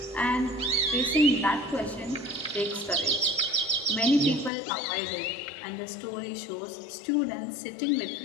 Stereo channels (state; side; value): drops out; right; at 4.5 s